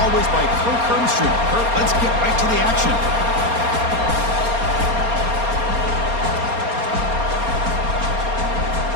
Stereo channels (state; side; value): late; left; 4.3 ms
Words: by Kirk Hermstrom. Kirk, let's get right to the action.